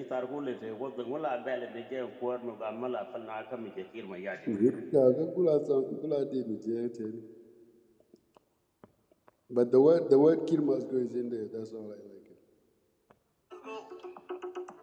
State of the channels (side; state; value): both; identical; correlation 1.00